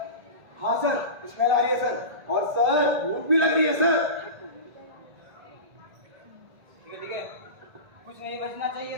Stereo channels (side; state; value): left; late; 1.8 ms